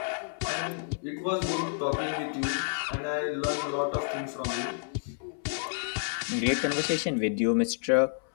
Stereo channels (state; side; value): silent; right; 58 dB below the other